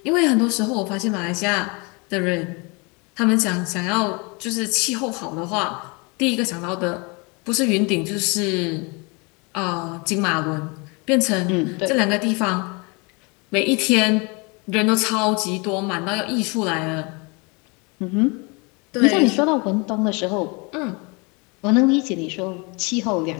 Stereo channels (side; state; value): right; quieter; 29.7 dB